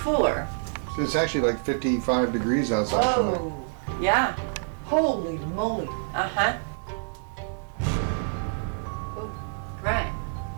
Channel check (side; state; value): left; silent; digital silence